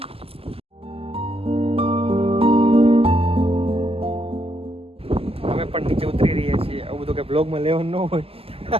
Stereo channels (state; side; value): late; left; 0.28 ms